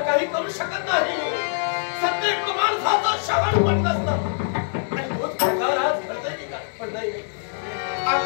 काही करू शकत नाही सत्य माणसाचं श्रवण पण नसतं आणि तोच प्रकार आज घडतंय की काय पण नाही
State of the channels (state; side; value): silent; right; digital silence